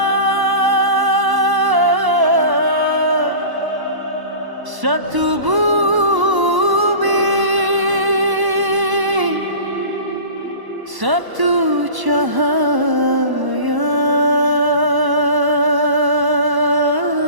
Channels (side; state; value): left; late; 1.0 ms